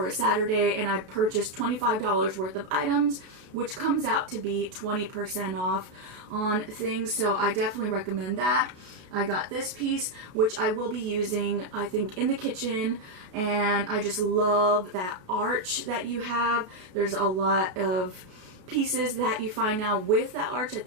a Saturday and I purchased $25 worth of items, which comes out to be 20% off on things. So I definitely recommend that. I got this piece, which I will be using, I think, in the kitchen, and I just love that arch that you have. There's a lot of pieces that you find now with that arch. I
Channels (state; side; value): late; left; 33 ms